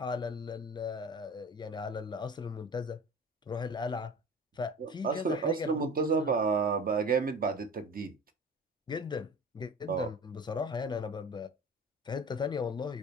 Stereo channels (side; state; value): both; normal; correlation 0.38